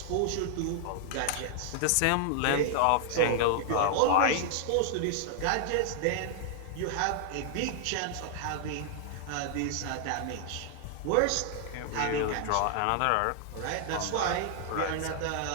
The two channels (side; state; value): both; different; correlation -0.01